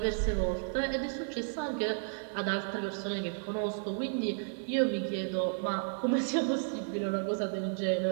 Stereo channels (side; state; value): left; silent; digital silence